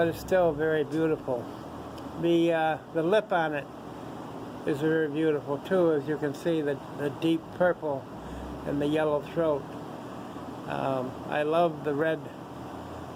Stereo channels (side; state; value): both; identical; correlation 1.00